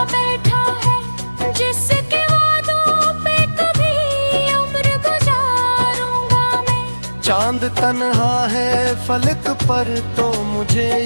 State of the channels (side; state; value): both; inverted; correlation -1.00